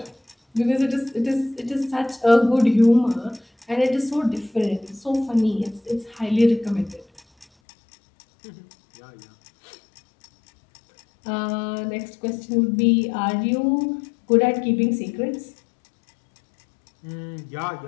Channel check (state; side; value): drops out; right; at 7.5 s